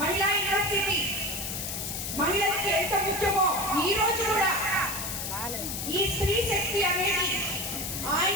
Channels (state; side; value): noise; left; hiss, 4 dB below the sound